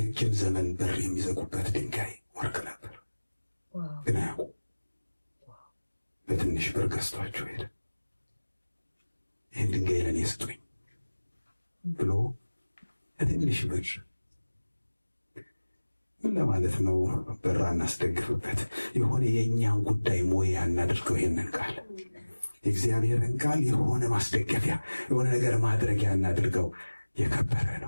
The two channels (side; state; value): both; inverted; correlation -1.00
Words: ዘመን በር የሚዘጉበት ድንጋይ ወርቅ ነበር፣ ግን አያውቁ። በትንሽ ብር ገዝቷቸው ሄደ። ይህን ድንጋይ ለእኔ ስጡኝ ብሎ በትንሽ ብር ምን ለማለት ነው? በራ እናስደግፍበት። የሆነ የእኛን ጉዳይ ሞያ እናድርገው። ይሄንን ቃል የእግዚአብሔርን ቃል የሆነ ማስደገፊያ፣ የሆነ ነገር ማድረጊያ እናድርገው። የከበረ